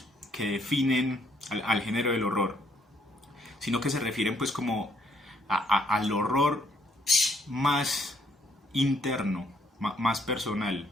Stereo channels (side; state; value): both; normal; correlation 0.69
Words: que definen al género del horror, sino que se refieren pues como al horror más interno, más personal,